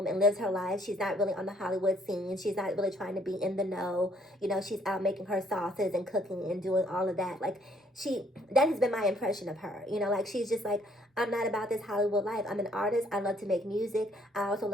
and lives her life. She's not really on the Hollywood scene. She's not really trying to be in the know. You know, she's out making her sauces and cooking and doing all of that. Like, that has been my impression of her. You know, like, she's just like, I'm not about this Hollywood life. I'm an artist. I love to make music. I also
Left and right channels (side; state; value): both; normal; correlation 0.64